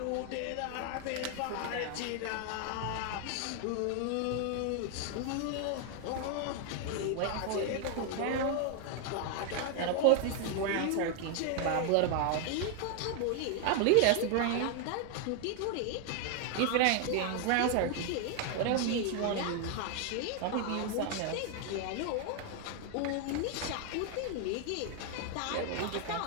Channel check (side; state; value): both; different; correlation 0.00